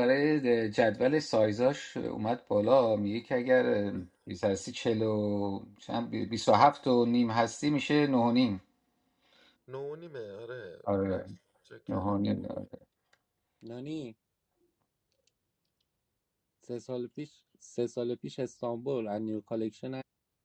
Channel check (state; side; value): identical; both; correlation 1.00